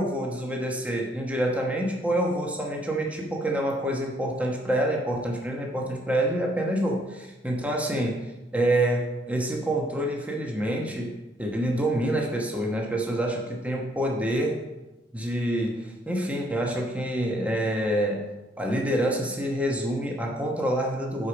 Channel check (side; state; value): both; normal; correlation 0.67